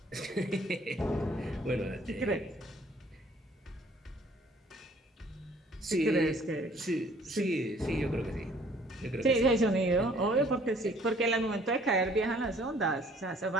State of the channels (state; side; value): normal; both; correlation 0.58